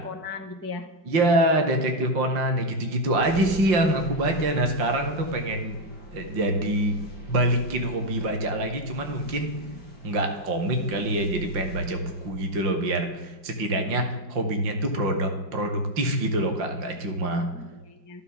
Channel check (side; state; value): left; late; 5.6 ms